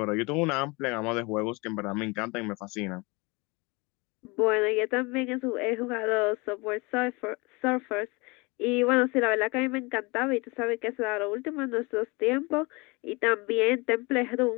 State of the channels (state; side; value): quieter; right; 26.8 dB